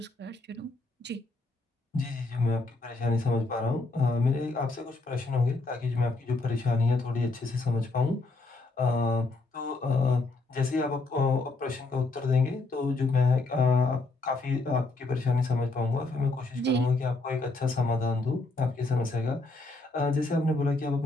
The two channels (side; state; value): right; quieter; 3.3 dB